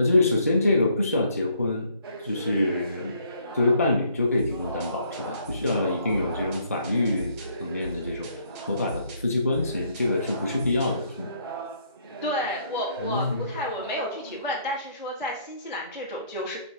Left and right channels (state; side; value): inverted; both; correlation -0.66